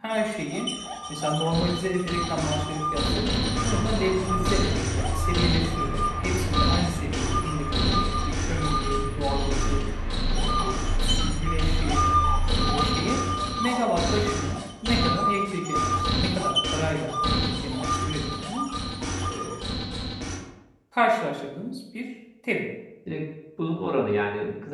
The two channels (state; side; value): identical; both; correlation 1.00